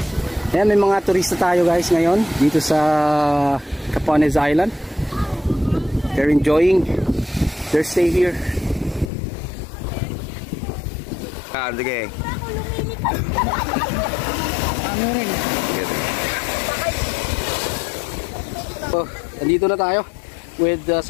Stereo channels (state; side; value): drops out; right; at 9.1 s